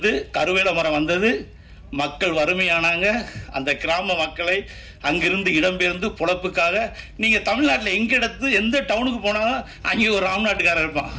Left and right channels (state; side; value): identical; both; correlation 1.00